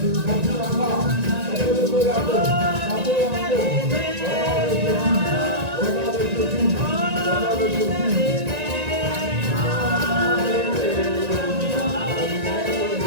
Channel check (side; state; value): left; late; 1.9 ms